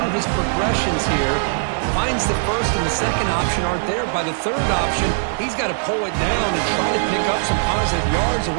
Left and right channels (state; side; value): silent; left; 66 dB below the other